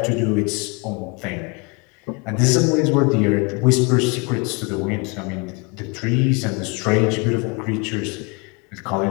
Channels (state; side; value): quieter; right; 30.3 dB